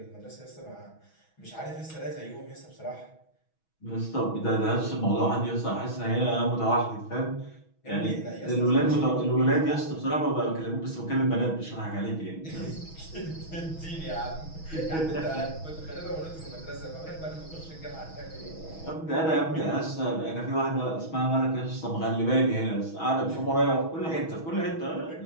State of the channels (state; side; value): late; right; 6.2 ms